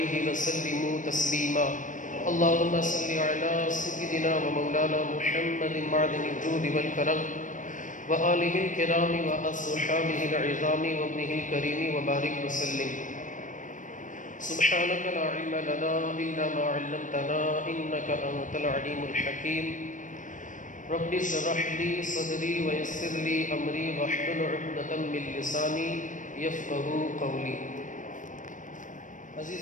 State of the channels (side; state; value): right; late; 0.37 ms